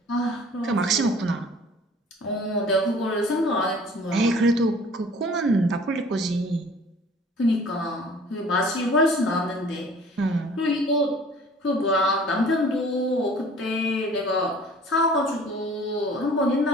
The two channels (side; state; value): both; normal; correlation 0.50